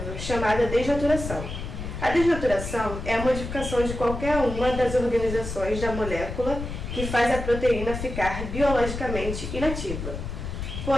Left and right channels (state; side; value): noise; left; rumble, 6 dB below the sound